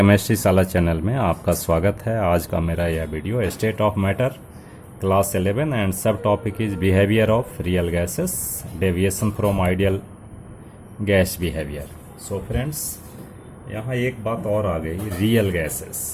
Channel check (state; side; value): identical; both; correlation 1.00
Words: साला चैनल में आपका स्वागत है। आज का मेरा यह video state of matter class 11 and subtopic is behaviour of real gases, deviation from ideal gas behaviour. So friends, यहाँ एक बात और आ गई, रियल